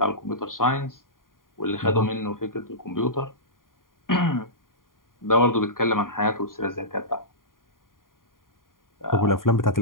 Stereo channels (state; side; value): late; right; 0.90 ms